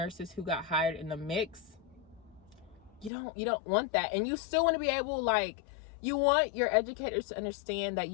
who got hired in the mix. You don't want that. And you still want to be able, like, you want your educators to understand that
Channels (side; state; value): right; drops out; at 3.1 s